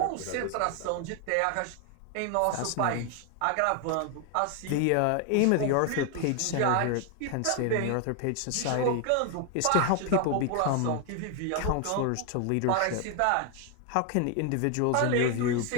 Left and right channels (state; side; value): different; both; correlation 0.01